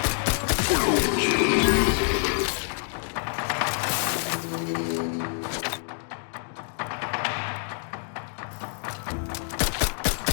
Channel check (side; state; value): right; silent; 57 dB below the other